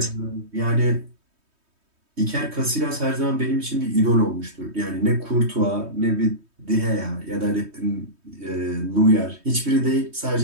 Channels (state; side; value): late; left; 3.2 ms